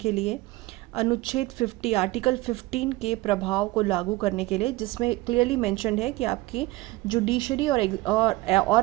लिए, अनुच्छेद 50 आर्टिकल 15 के प्रभाव को लागू करने के लिए, जिसमें क्लियरली मेंशन्ड है कि आपकी जुडिशरी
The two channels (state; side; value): quieter; left; 20.0 dB